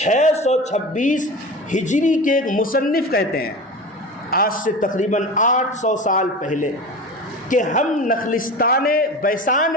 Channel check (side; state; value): both; normal; correlation 0.31